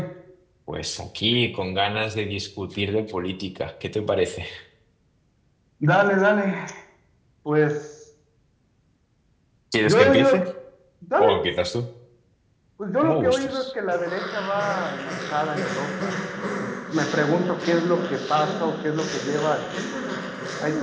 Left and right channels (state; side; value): identical; both; correlation 1.00